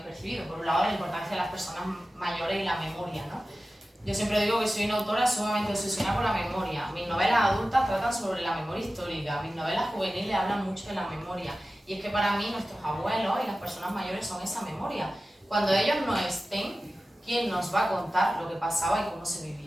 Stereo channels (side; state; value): both; normal; correlation 0.95